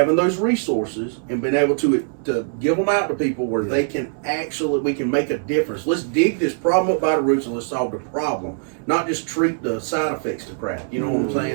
those resources and being able to give them out to people where they can we can make a difference. Let's dig this problem up by the roots and let's solve the problem, not just treat the side effects to crap. You know what I'm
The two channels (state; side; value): silent; left; 64 dB below the other